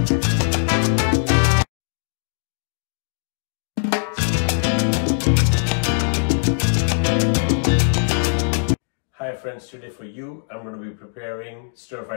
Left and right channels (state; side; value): silent; right; digital silence